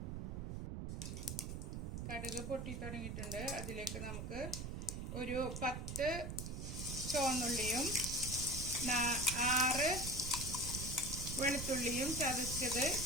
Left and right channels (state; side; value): noise; right; rumble, 5 dB below the sound